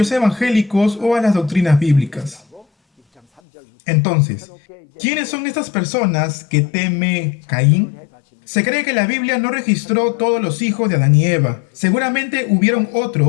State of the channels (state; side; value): drops out; right; at 3.4 s